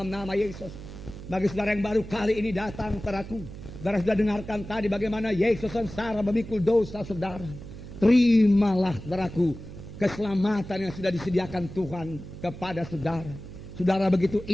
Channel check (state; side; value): noise; right; hum, 13 dB below the sound